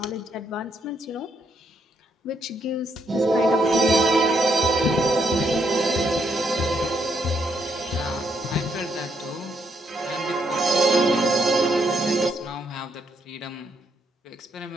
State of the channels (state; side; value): normal; both; correlation 0.75